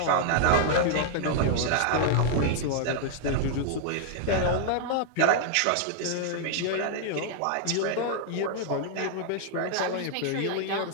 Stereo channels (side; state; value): both; different; correlation 0.00